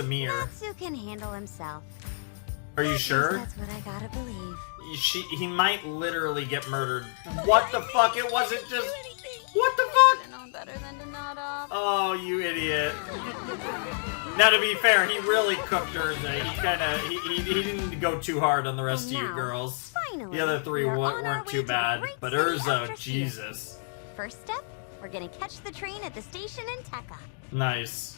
mirror. Natsu can handle himself. Are you At least sure? That's what I gotta believe. He might literally get murdered. What the fuck? It wasn't just... What the I fuck? know better than to nod off. Oh, you idiot. Now, to be fair, he really cooked hers there. He kinda... He didn't go too hard on the rest And of you now, girls. Finally, The other three we are on our weren't way too to the bad. great But city of Urza, Drasil. Jesus. First step, we're gonna catch the train at the station in Tekka. Nice.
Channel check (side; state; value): right; silent; digital silence